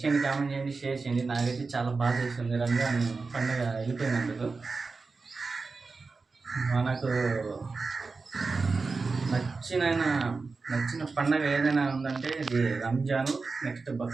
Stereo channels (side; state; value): left; quieter; 4.2 dB